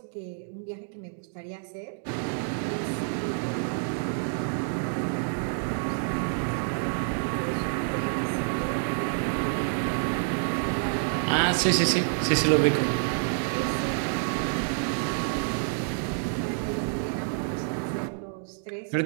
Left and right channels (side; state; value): left; silent; 59 dB below the other